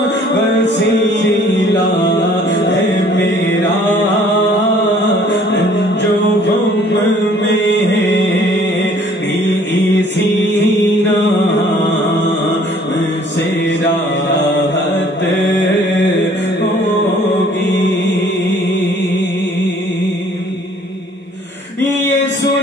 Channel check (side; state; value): both; normal; correlation 0.57